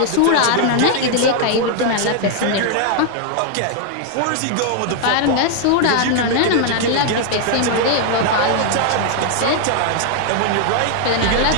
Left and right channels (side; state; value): both; different; correlation 0.00